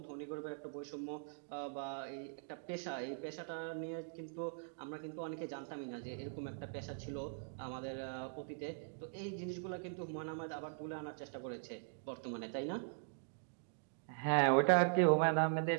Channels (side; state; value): left; silent; digital silence